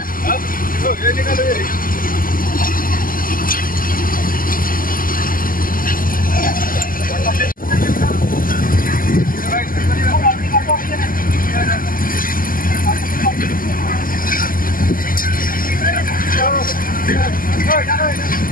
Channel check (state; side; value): late; right; 0.41 ms